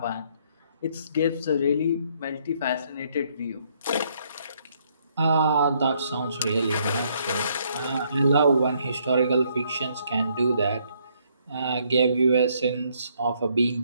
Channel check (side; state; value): both; inverted; correlation -0.70